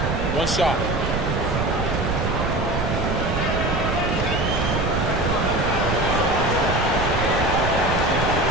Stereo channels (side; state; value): right; noise; rumble, 2 dB below the sound